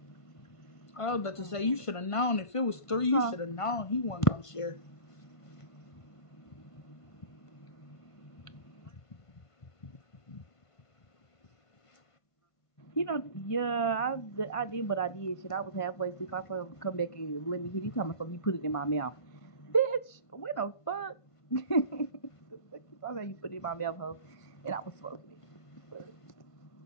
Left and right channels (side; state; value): right; late; 1.5 ms